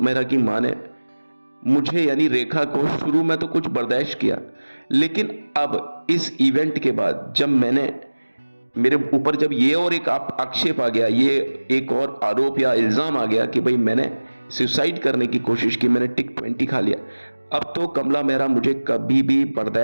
मेहरा की मां ने मुझे यानी रेखा को शुरू में तो कुछ बर्दाश्त किया, लेकिन अब इस इवेंट के बाद जब मेरे ऊपर जब ये और एक आक्षेप आ गया, ये एक और आरोप या इल्जाम आ गया कि भाई मैंने सुसाइड करने की कोशिश की, मैंने टिक 20 खा लिया, अब तो कमला मेहरा मुझे कभी भी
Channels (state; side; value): inverted; both; correlation -1.00